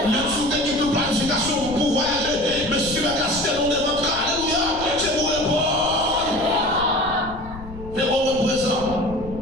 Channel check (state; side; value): noise; left; rumble, 14 dB below the sound